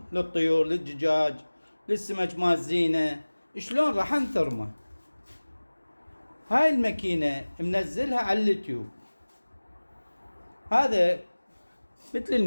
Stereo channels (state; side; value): inverted; both; correlation -1.00